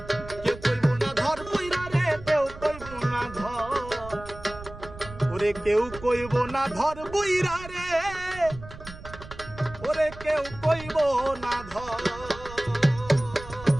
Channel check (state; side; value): noise; right; rumble, 15 dB below the sound